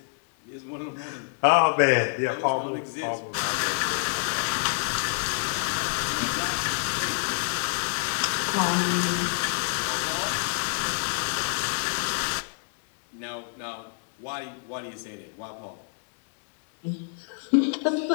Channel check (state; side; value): silent; right; 60 dB below the other